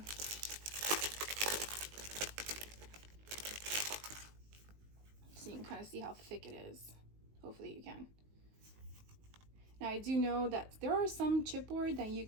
so you can kind of see how thick it is. Hopefully you can. Now I do know that there are some chipboard that you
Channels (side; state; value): left; late; 19 ms